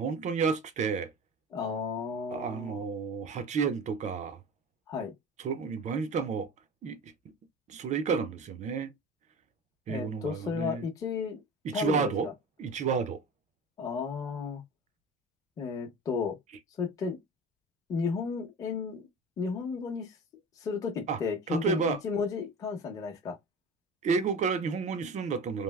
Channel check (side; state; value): both; normal; correlation 0.34